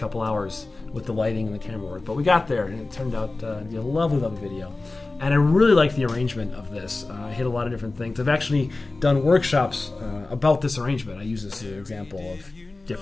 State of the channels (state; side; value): quieter; right; 3.3 dB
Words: hours with the lighting and the camera work. But we got there, and it turned out to be a lovely, lovely video. And I really like the arrangement of this. I hit a lot of different things. I've actually done workshops about this arrangement. I use this as an example of